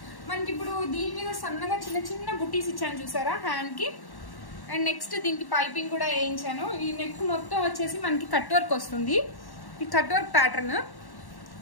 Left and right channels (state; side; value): late; right; 1.1 ms